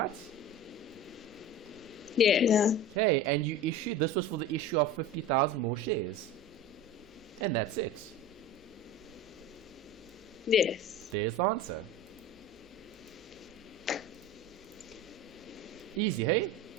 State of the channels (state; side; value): noise; left; hum, 28 dB below the sound